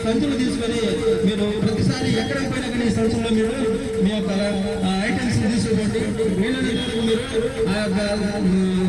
సంచులు తీసుకొని మీరు ప్రతిసారి ఎక్కడికి పోయినా కానీ ఈ సంచుల్లో మీరు మీ యొక్క ఐటమ్స్ తీసుకోండి. వీలైనంత వరకు మీరు ఆ యొక్క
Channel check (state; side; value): identical; both; correlation 1.00